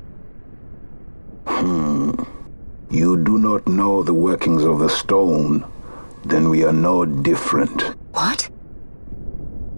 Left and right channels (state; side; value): inverted; both; correlation -1.00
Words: You do not know the workings of the stone. Then we are no different. What?